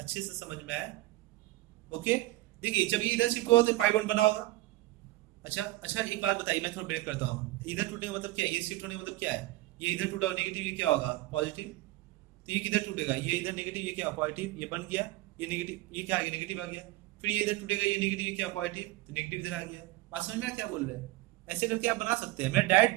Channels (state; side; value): quieter; left; 18.9 dB